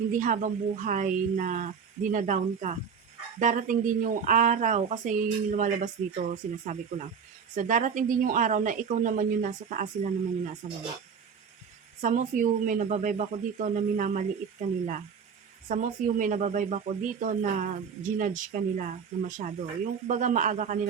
habang buhay na dinadown ka. Darating din yung araw, kasi yun yung lumalabas dito, sinasabi ko lang. So, darating din yung araw na ikaw naman yung nasa taas, sila naman yung nasa baba. Some of you, may nababibe ako dito na minamaliit ka nila. Some of you, may nababibe ako dito na ginudge ka nila na masyado. Yung baga maaga ka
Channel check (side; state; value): left; quieter; 6.5 dB